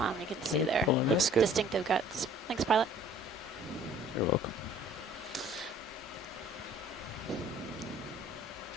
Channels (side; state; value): both; normal; correlation 0.53